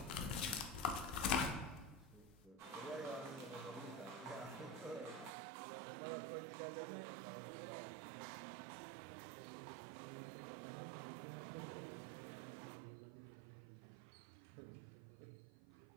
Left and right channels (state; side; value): drops out; left; at 5.3 s